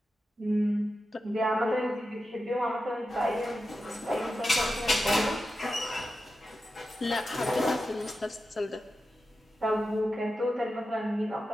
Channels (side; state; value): both; normal; correlation 0.91